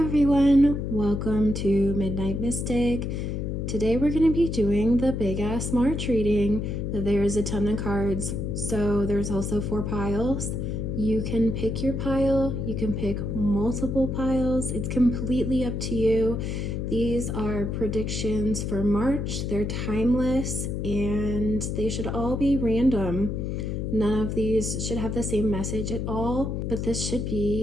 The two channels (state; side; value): noise; left; hum, 2 dB below the sound